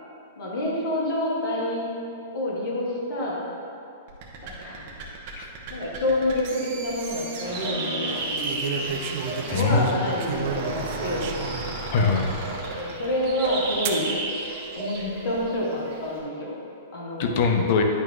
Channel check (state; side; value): inverted; both; correlation -0.33